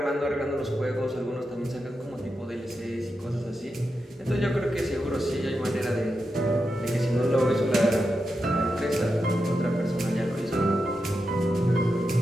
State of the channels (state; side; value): normal; both; correlation 0.88